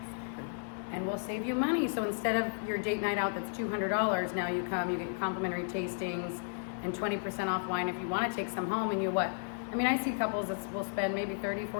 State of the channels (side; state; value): right; silent; 55 dB below the other